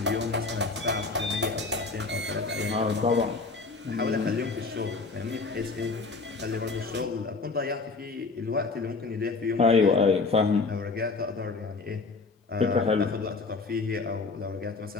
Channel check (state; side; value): quieter; right; 4.1 dB